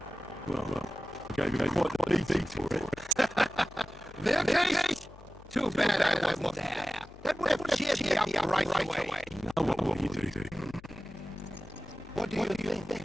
Well, gave you quite a beating for it. Wirklich? Too bad I wasn't there. That would have cheered me up right away. Now what will you do? What do you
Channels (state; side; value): noise; left; hum, 21 dB below the sound